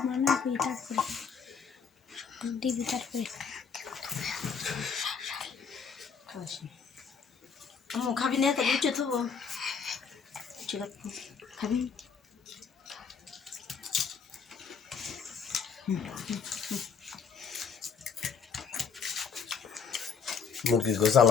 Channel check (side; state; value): right; quieter; 6.2 dB